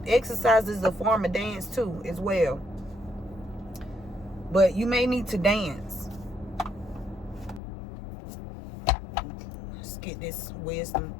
Exercise is a form of dance too, as well. But you may need to dance. Let's get this wisdom.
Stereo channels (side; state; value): right; drops out; at 7.6 s